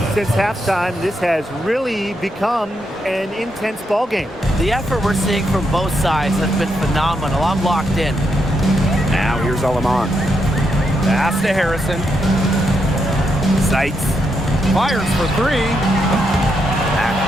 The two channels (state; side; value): normal; both; correlation 0.80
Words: Since halftime, this has really become an intense ball game. The effort we're seeing from both sides has been phenomenal. I'm locked in. Now here's Aleman. Pass to Harrison. Sykes. Fires for three.